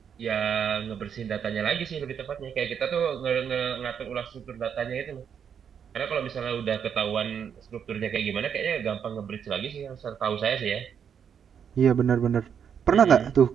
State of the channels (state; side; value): quieter; left; 7.7 dB